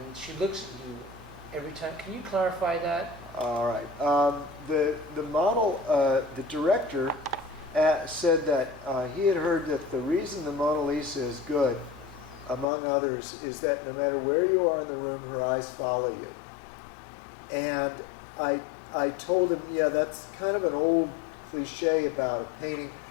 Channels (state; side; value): drops out; right; at 12.7 s